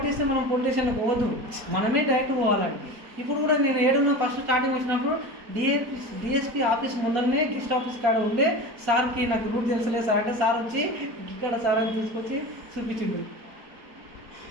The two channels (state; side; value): late; left; 4.1 ms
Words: మనం పోలీస్ స్టేషన్లకు పోవద్దు, మనమే డైరెక్ట్ పోవాలండి. ఇప్పుడు కూడా నేను ఏడున్నా ఫస్ట్ స్టార్టింగ్ వచ్చినప్పుడు డిఎస్పీ ఆఫీస్ ముందరనే గెస్ట్ ఆఫీస్ కాడ ఉండే సార్కి నాకు రూట్ తెలుసులే సార్ అంటే సార్ వచ్చి ఇక్కడ సార్ అని తీసుకొచ్చి చూపించిండు.